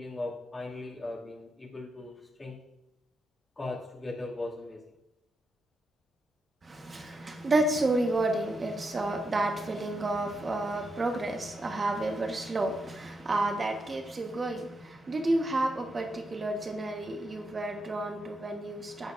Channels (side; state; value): both; normal; correlation 0.84